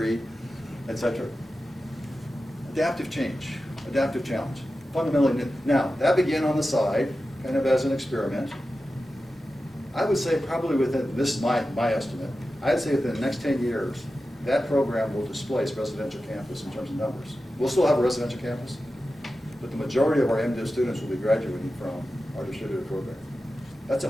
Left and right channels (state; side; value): normal; both; correlation 0.93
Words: etc. Adaptive change, adaptive challenge. Fundamentally new. Now, that began on the side, kind of as an experiment. I would say probably within, this is my estimate, I'd say within the next 10 years, that program will displace residential campus in terms of numbers. We'll still have a residential campus, but the majority of our MDiv students will be graduating from our distributed program. That's a